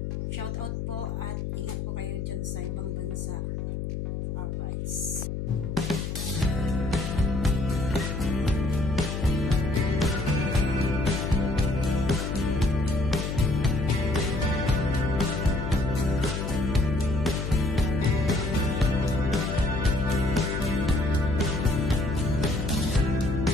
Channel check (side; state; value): left; noise; hum, 4 dB below the sound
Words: Shoutout po at ingat po kayo dyan sa ibang bansa. Alright.